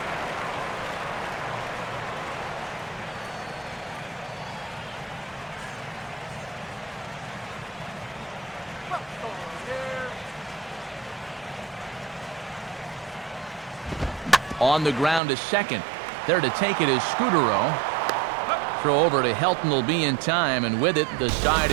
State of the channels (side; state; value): left; drops out; at 15.2 s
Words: On the ground to second. There to take it is Scudero. Throw over to Helton will be in time, and with it, the side